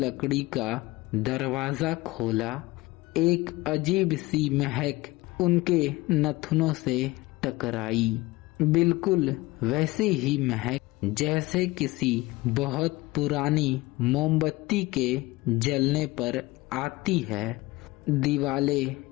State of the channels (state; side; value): quieter; right; 20.6 dB